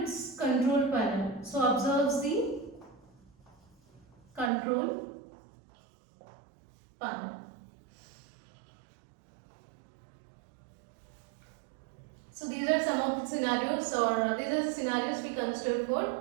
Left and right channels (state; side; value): drops out; left; at 4.5 s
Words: control panel. So observes the control panel. So these are some of the scenarios, or these are the scenarios we consider for